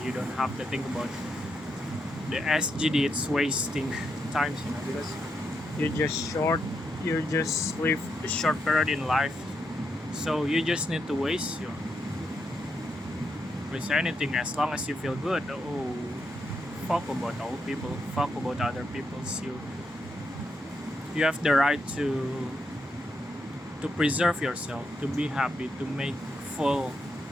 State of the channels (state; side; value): normal; both; correlation 0.81